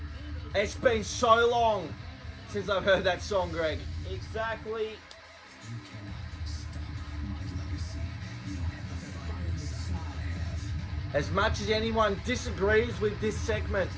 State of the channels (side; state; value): both; identical; correlation 1.00